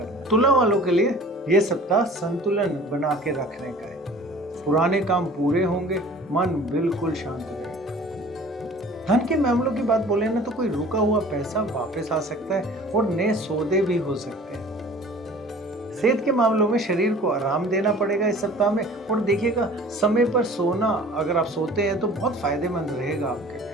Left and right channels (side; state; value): both; normal; correlation 0.46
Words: है। तुला वालों के लिए यह सप्ताह संतुलन बना के रखने का है। पुराने काम पूरे होंगे, मन बिल्कुल शांत रहेगा। धन के मामलों की बात बोले ना तो कोई रुका हुआ पैसा वापस आ सकता है और नए सौदे भी हो सकते हैं। सेहत के मामलों में शरीर को आराम देना पड़ेगा इस सप्ताह में और देखिएगा समय पर सोना, अगर आप सोते हैं तो बहुत फायदेमंद रहेगा आपके